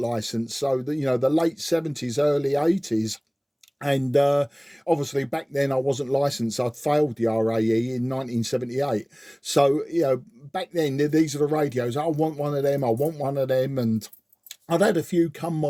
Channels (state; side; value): identical; both; correlation 1.00